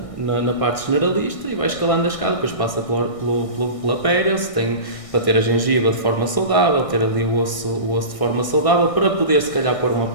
na parte generalista e vai escalando a escada, depois passa pela pério, tem para ter a gengiva de forma saudável, ter ali o osso de forma saudável, para poder se calhar pôr um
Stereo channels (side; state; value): right; late; 1.6 ms